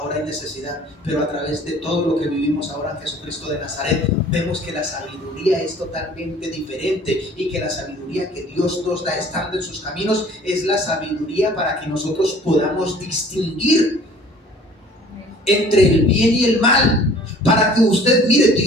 hay necesidad, pero a través de todo lo que vivimos ahora en Jesucristo de Nazaret, vemos que la sabiduría es totalmente diferente y que la sabiduría que Dios nos da estando en sus caminos es la sabiduría para que nosotros podamos distinguir entre el bien y el mal. Para que usted, mire,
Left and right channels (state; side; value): normal; both; correlation 0.51